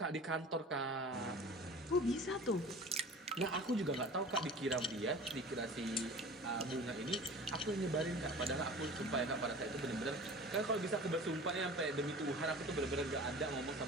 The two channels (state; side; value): normal; both; correlation 0.39